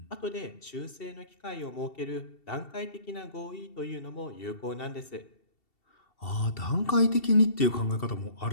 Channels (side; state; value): right; late; 2.7 ms